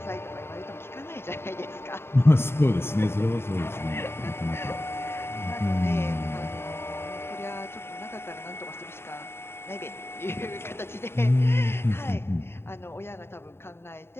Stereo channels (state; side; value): late; right; 0.12 ms